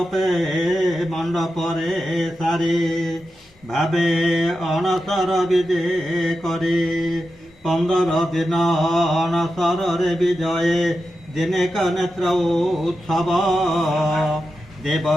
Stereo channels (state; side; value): normal; both; correlation 0.90